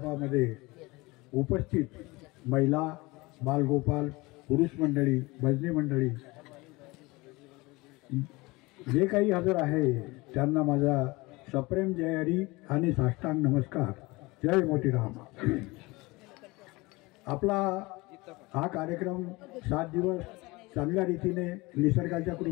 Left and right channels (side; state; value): right; quieter; 23.0 dB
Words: उपस्थित महिला, बालगोपाल, पुरुष मंडळी, भजनी मंडळी जे काही हजर आहे त्यांना माझा सप्रेम जय हरी आणि साष्टांग नमस्कार. जय मोतीराम. आपला हा कार्यक्रम 7 दिवस चांगल्या रीतीने निसर्गाच्या